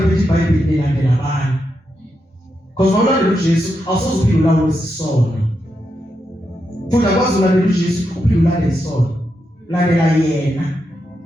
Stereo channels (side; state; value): both; normal; correlation 0.85